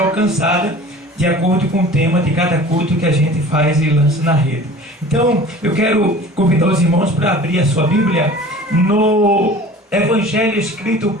alcançadas de acordo com o tema de cada culto que a gente faz e lança na rede. Então, eu quero convidar os irmãos para abrir a sua Bíblia no Evangelho escrito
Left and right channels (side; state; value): both; normal; correlation 0.43